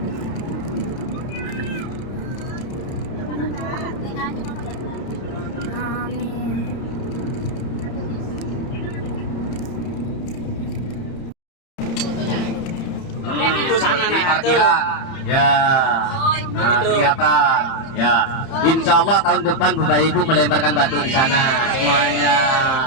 Amin. Itu sana Di nah, parkiran. Ya. Nah, kelihatan. Ya. Insya Allah tahun depan Bapak Ibu melemparkan batu di sana semuanya.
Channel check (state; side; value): late; right; 30 ms